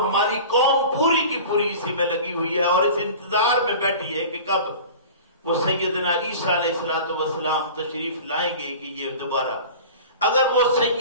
قوم پوری کی پوری اسی میں لگی ہوئی ہے اور اس انتظار میں بیٹھی ہے کہ کب وہ سیدنا عیسیٰ علیہ السلام تشریف لائیں گے کہ یہ دوبارہ، اگر وہ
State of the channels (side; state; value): both; inverted; correlation -0.38